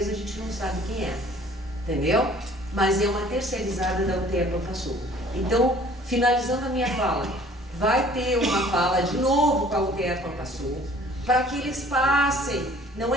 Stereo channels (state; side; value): normal; both; correlation 0.53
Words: a gente não sabe quem é, entendeu? Mas é uma terceirizada da UTE Profasul. Então, finalizando a minha fala, vai ter uma fala de novo com a UTE Profasul, para que eles passem. Não